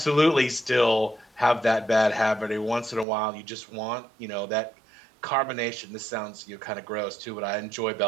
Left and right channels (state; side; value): drops out; left; at 3.1 s